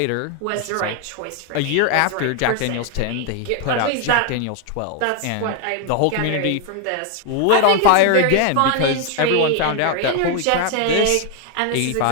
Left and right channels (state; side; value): different; both; correlation 0.01